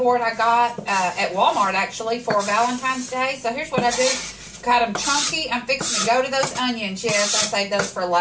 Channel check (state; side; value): identical; both; correlation 1.00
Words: I got at Walmart actually for Valentine's Day. So here's what I do. Got them chunky. I'm fixing to go to those onions. Yes, I saved those for